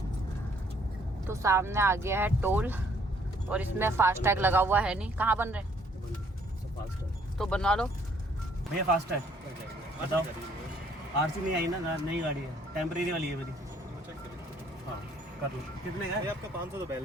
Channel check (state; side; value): normal; both; correlation 0.64